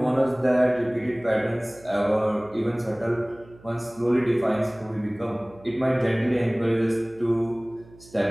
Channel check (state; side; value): noise; right; hum, 24 dB below the sound